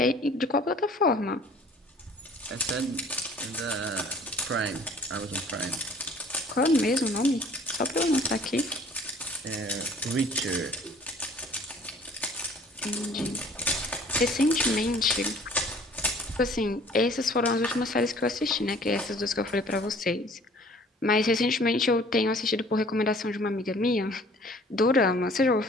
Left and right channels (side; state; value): both; normal; correlation 0.53